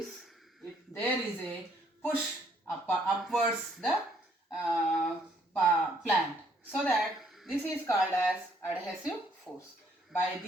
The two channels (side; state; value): both; normal; correlation 0.67